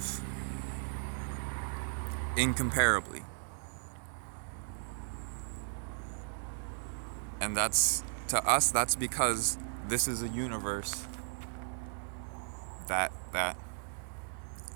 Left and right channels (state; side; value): silent; left; digital silence